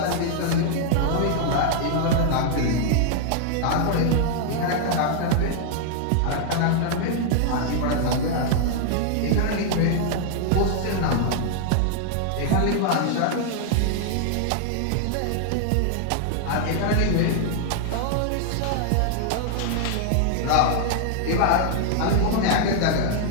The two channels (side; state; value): both; different; correlation 0.00